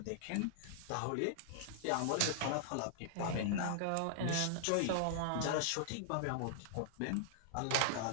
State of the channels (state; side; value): different; both; correlation -0.01